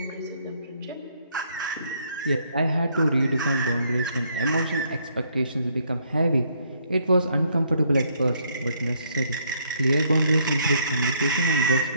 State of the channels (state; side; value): inverted; both; correlation -0.69